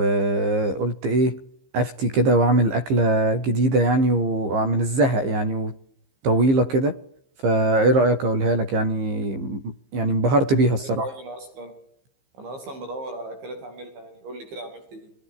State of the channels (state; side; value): late; left; 15 ms